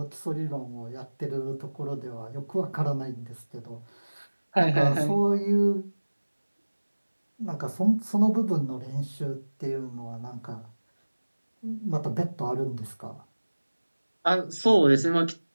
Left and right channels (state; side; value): inverted; both; correlation -1.00